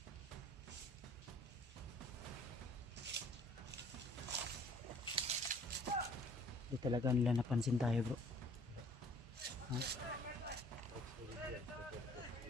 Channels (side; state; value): both; normal; correlation 0.55